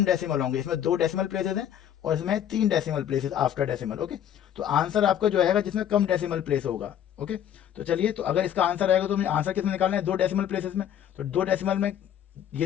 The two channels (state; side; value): quieter; right; 10.0 dB